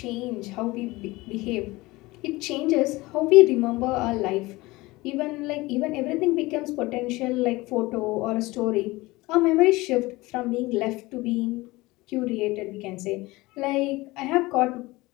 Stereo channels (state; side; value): quieter; right; 20.9 dB